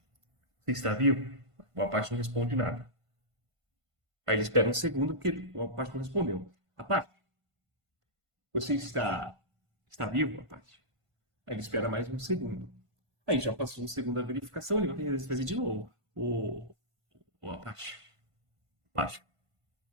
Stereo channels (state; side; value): late; left; 1.5 ms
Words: Você está vivo? O Apache não responde nada. Aí ele espera 1 segundo, porque o Apache não respondeu. Apache, você está vivo, Apache? Aí ele espera mais 1 segundo. Aí já passou 1 segundo da verificação, ele vai fazer de novo. O Apache. Apache.